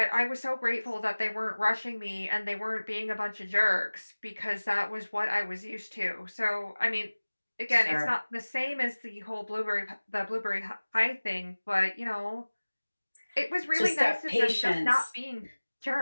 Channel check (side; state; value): both; inverted; correlation -1.00